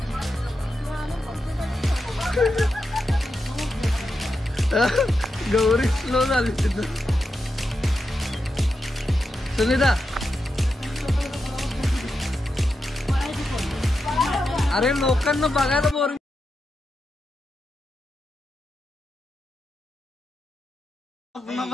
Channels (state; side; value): normal; both; correlation 0.88